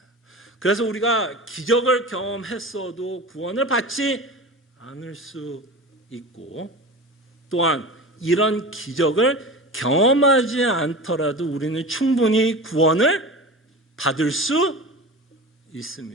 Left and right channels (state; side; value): normal; both; correlation 0.31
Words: 그래서 우리가 기적을 경험했어도 구원을 받지 않을 수 있고, 또한 이런 기적을 경험하지 않더라도 우리는 충분히 구원을 받을 수